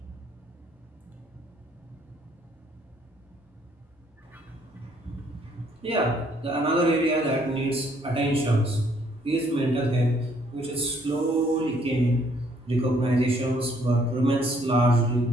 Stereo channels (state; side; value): normal; both; correlation 0.66